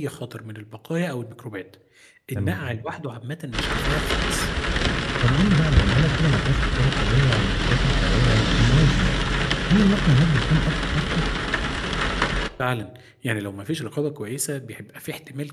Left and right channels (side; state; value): both; identical; correlation 1.00